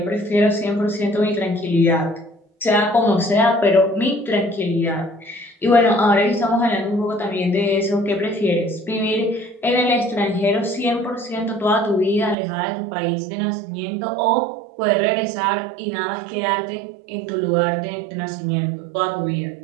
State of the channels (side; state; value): left; drops out; at 12.4 s